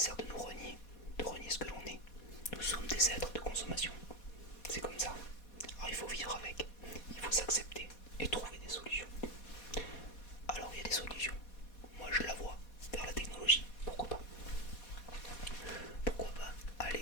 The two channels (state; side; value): late; right; 4.2 ms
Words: de nous renier, de renier ce que l'on est? Nous sommes des êtres de consommation, c'est comme ça. Alors il faut vivre avec, il faut s'accepter et trouver des solutions. Alors il y a des solutions, moi je la vois, vers la technologie, pourquoi pas? Pourquoi pas